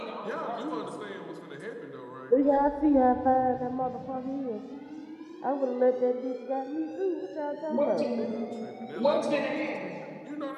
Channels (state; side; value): identical; both; correlation 1.00